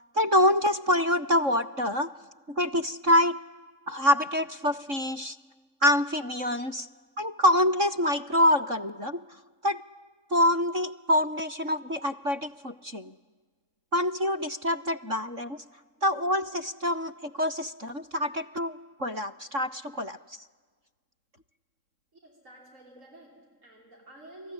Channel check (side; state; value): left; late; 3.6 ms